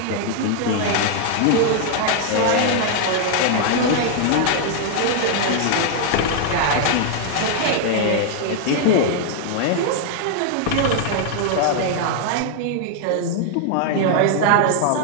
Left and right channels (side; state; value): both; different; correlation 0.00